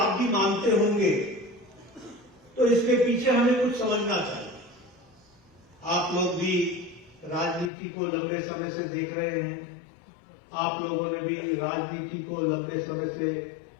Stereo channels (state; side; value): drops out; right; at 7.7 s